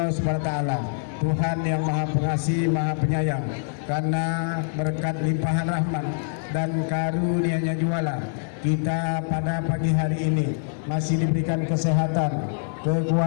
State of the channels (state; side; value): silent; right; 62 dB below the other